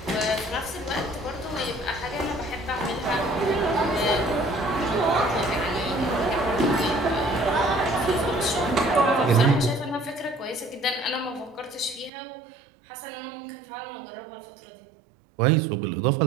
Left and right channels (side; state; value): left; drops out; at 12.1 s